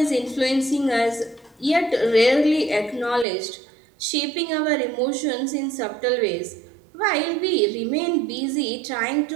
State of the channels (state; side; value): drops out; left; at 3.2 s